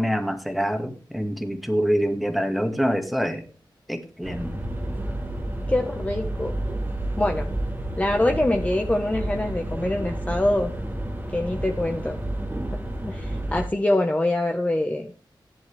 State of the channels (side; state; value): both; normal; correlation 0.95